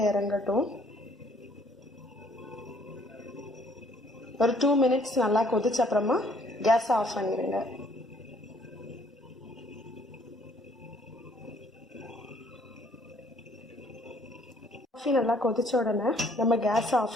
இறங்கட்டும். ஒரு 2 மினிட்ஸ் நல்லா கொதிச்ச அப்புறமா கேஸை ஆஃப் பண்ணிடுங்க. காஃபி நல்லா கொதிச்ச உடனே நம்ம கேஸை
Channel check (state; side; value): normal; both; correlation 0.63